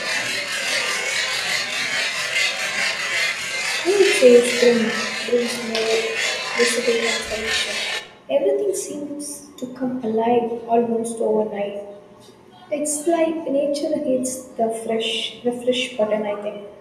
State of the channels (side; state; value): both; identical; correlation 1.00